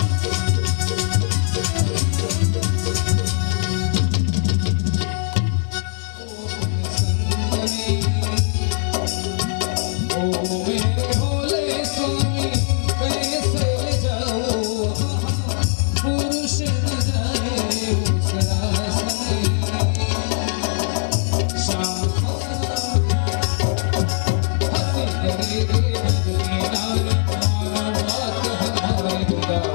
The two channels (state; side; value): silent; right; digital silence